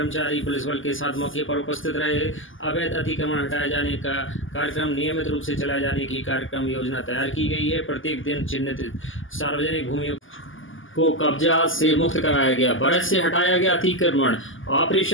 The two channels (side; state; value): right; late; 0.58 ms